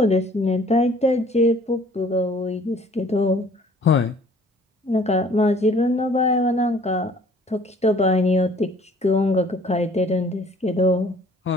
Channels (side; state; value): both; normal; correlation 0.55